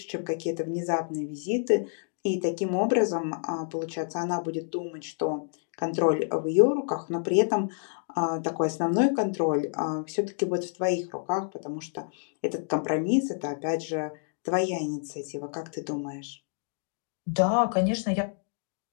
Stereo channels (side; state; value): right; silent; digital silence